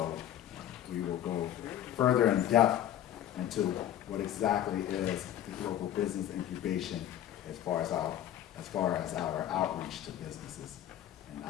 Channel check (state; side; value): quieter; right; 11.5 dB